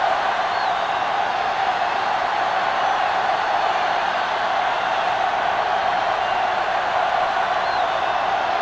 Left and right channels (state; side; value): identical; both; correlation 1.00